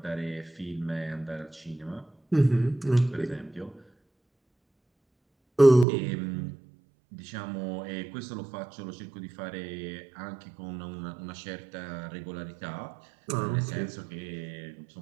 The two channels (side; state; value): left; drops out; at 5.9 s